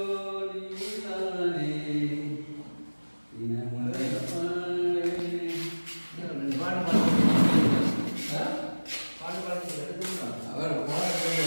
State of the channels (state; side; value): inverted; both; correlation -1.00